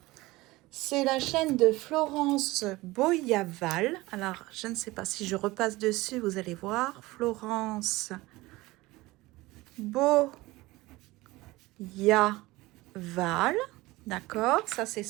C'est la chaîne de Florence Boyaval. Alors, je ne sais pas si je repasse dessus, vous allez voir. Florence Boyaval. D'accord, ça c'est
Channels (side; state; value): left; quieter; 20.1 dB